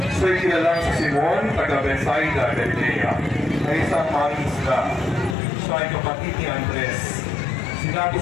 Siya'y kilalang sa Simon, taga Bethsaida, Galilea, na isang mangingisda. Siya ay kapatid ni Andres. Sinabi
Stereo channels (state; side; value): drops out; right; at 5.4 s